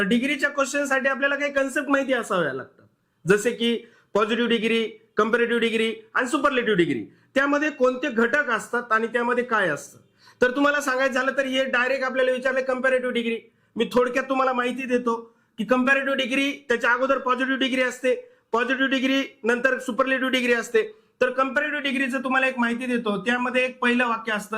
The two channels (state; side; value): identical; both; correlation 1.00